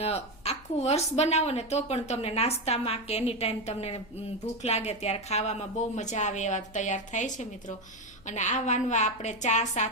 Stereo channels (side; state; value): left; noise; hum, 24 dB below the sound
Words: આખું વર્ષ બનાવો ને તો પણ તમને નાસ્તામાં કે એની ટાઈમ તમને ભૂખ લાગે ત્યારે ખાવામાં બહુ મજા આવે એવા તૈયાર થાય છે મિત્રો. અને આ વાનવા આપણે ચા